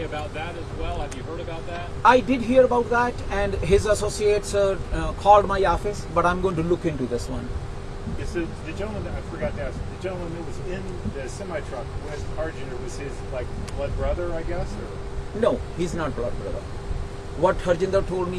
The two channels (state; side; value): identical; both; correlation 1.00